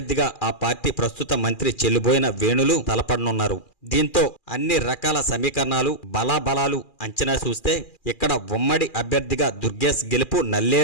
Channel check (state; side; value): late; right; 2.4 ms